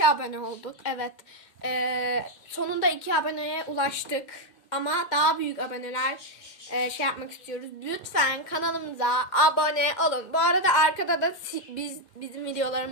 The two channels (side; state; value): right; late; 2.1 ms